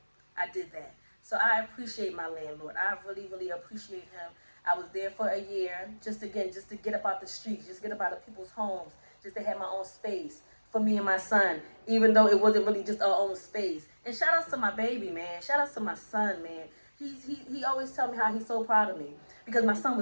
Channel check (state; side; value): inverted; both; correlation -1.00